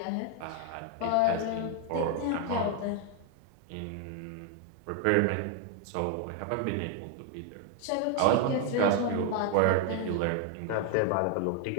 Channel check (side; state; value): both; different; correlation 0.01